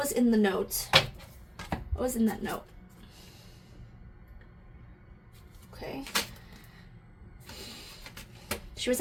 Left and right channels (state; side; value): identical; both; correlation 1.00